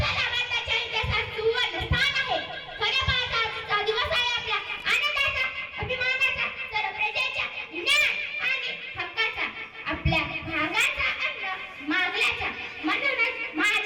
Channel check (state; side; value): identical; both; correlation 1.00